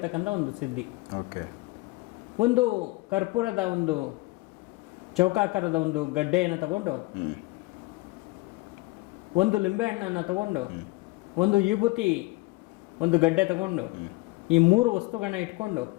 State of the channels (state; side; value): quieter; right; 22.6 dB